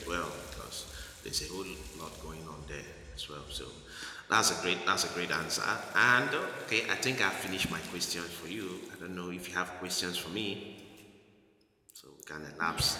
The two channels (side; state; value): both; identical; correlation 1.00